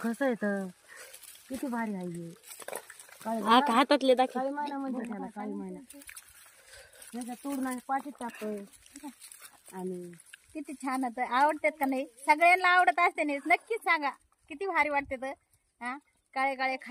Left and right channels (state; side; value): identical; both; correlation 1.00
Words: येत किती भारी आहे हातातले दाखव. काळी महिना म्हणते त्याला, काळी महिना. ह्याचा तोडून पाठीत टाकतोय आणि किती छान होतं. आवडतात का नाही? सगळ्यांना आवडत असते नाही, नक्कीच सांगा किती भारी वाटते तर. हा, काळे काळे